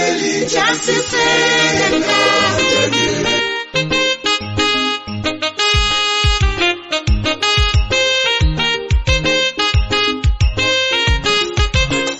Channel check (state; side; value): identical; both; correlation 1.00